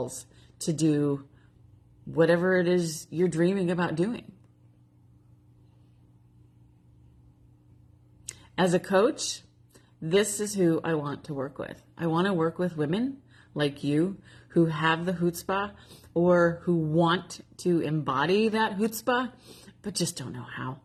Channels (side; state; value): both; identical; correlation 1.00